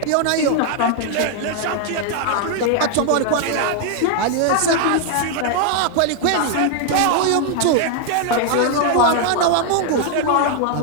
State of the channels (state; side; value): different; both; correlation 0.00